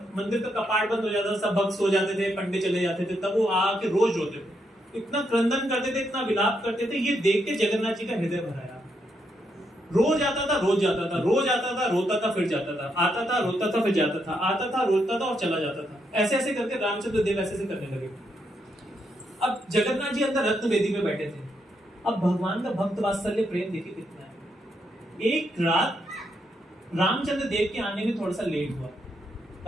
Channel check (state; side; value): normal; both; correlation 0.79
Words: मंदिर का कपाट बंद हो जाता था, सब भक्त सो जाते थे, पंडित चले जाते थे, तब वो आके रोज रोते थे, इतना क्रंदन करते थे, इतना विलाप करते थे। ये देख के जगन्नाथ जी का हृदय भराया। रोज आता था, रोज जाता था, रोज आता था, रोता था, फिर जाता था, आता था, रोता था, फिर जाता था, आता था, रोता था और चला जाता था। ऐसे ऐसे करके रामचंद्र देव ऐसे करने लगे। अब जगन्नाथ जी अंदर रत्न वेदी में बैठे थे। अब भगवान का भक्त वात्सल्य प्रेम देखिए कितना है। एक रात रामचंद्र देव के आने में थोड़ा सा लेट हुआ,